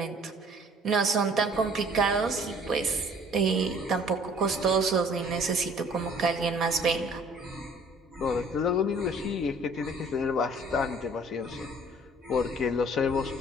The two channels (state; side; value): normal; both; correlation 0.54